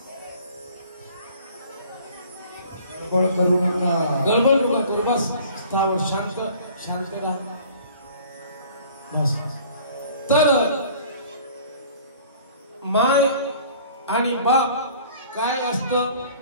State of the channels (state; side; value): inverted; both; correlation -0.50